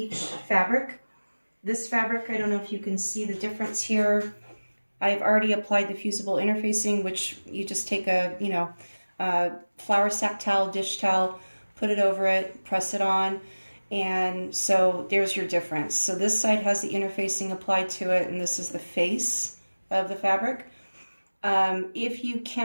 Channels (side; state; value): both; inverted; correlation -1.00